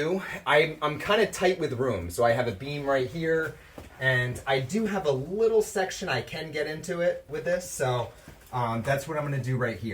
I'm kind of tight with room. So I have a beam right here. And I do have a little section I can get into it with this, so that's what I'm going to do right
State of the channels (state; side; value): identical; both; correlation 1.00